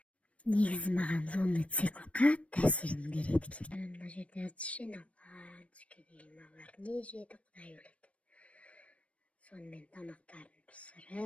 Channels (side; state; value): right; late; 0.063 ms